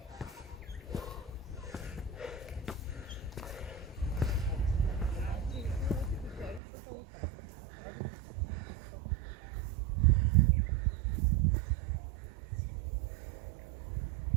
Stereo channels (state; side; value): drops out; left; at 6.6 s